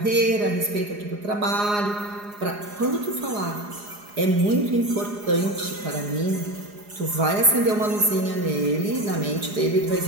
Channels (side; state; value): left; late; 4.8 ms